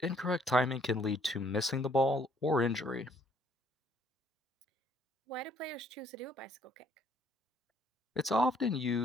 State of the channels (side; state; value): both; normal; correlation 0.64